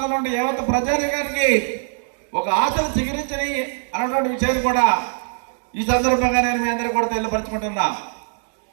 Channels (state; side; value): silent; left; digital silence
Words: ఉండే యావత్ ప్రజానికానికి ఒక ఆశలు చిగురించని అన్నటువంటి విషయాన్ని కూడా ఈ సందర్భంగా నేను మీ అందరికీ కూడా తెలియపరచుకుంటున్నా.